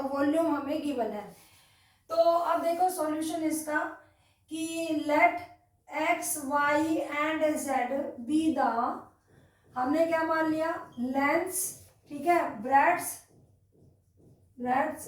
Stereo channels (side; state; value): both; identical; correlation 1.00